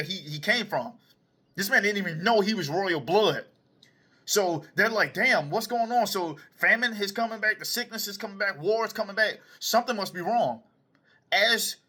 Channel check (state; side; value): identical; both; correlation 1.00